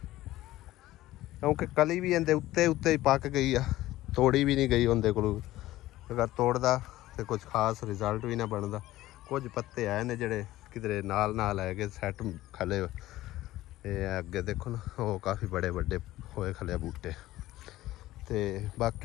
क्योंकि कली भी इहदे उत्ते ही पक गई आ, तोड़ी भी नहीं गई उनके कोलों। अगर तोड़दा तो कुछ खास रिजल्ट भी ना बनता। कुछ पत्ते आए ने जिहड़े किधरे नाल है कि सैट खले, अगे देखो ना वो काफ़ी बड़े बड़े होए खले बूटे, ते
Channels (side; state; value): right; quieter; 15.9 dB